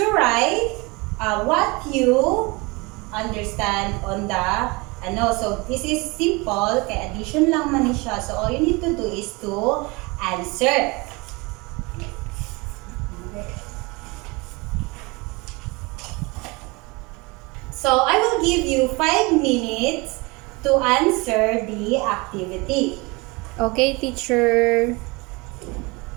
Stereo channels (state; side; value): quieter; left; 26.0 dB